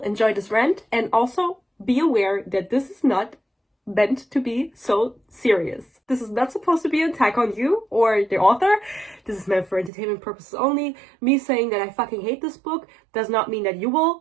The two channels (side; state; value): left; drops out; at 9.9 s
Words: this rant and also be aware that this is not meant to be so serious. This is not supposed to be an attack on you or the author. This is meant for entertainment purposes only. Me saying that I fucking hate this book does not mean that you